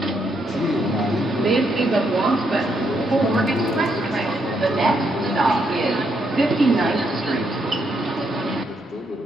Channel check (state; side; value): normal; both; correlation 0.77